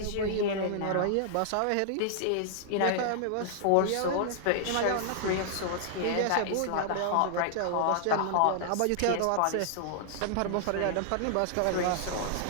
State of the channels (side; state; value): both; different; correlation -0.01